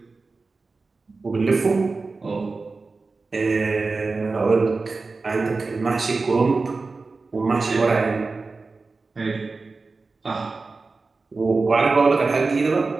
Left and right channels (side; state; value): left; quieter; 3.9 dB